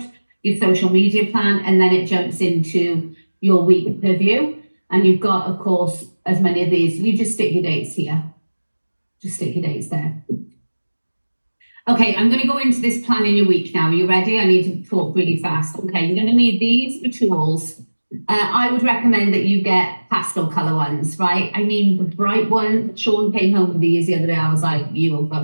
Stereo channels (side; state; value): both; inverted; correlation -1.00